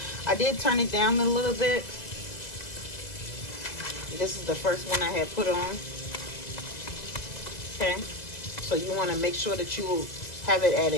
I did turn it down a little bit. This is the first one I had put on. Okay, so you want to make sure that you have it at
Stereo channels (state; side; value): late; right; 2.0 ms